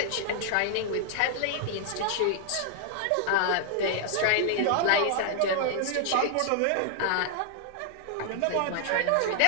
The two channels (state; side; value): different; both; correlation 0.00